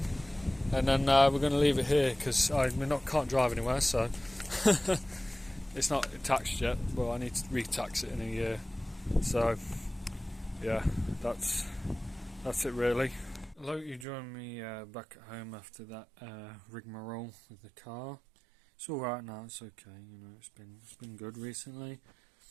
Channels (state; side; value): drops out; left; at 14.1 s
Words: and then we're going to leave it here because can't drive anywhere, so it's not taxed yet, but I need to re-tax it in a year. So yeah, that's it really. I hope you join me back at home after that rigmarole with the car. It's all right now. It's okay. You know, it's been good recently.